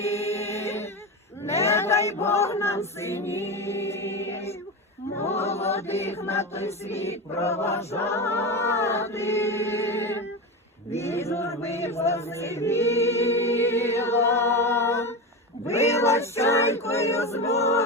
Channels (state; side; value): normal; both; correlation 0.20